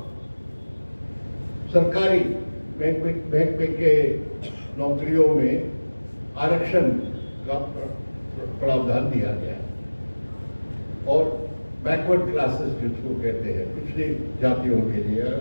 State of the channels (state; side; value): inverted; both; correlation -1.00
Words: सरकारी बैंक के नौकरियों में आरक्षण का प्रावधान दिया गया है। और बैकवर्ड क्लासेस जिसको कहते हैं, पिछड़ी जातियों के लिए,